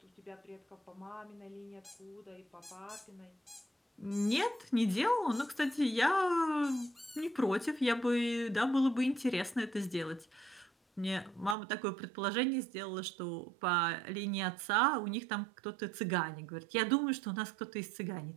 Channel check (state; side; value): drops out; left; at 11.6 s